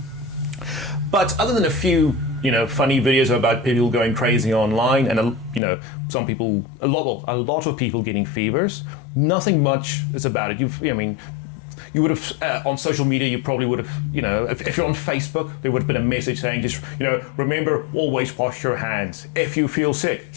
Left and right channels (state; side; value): drops out; right; at 5.6 s